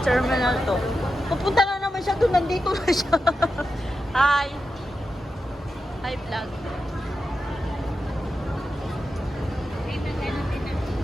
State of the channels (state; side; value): normal; both; correlation 0.90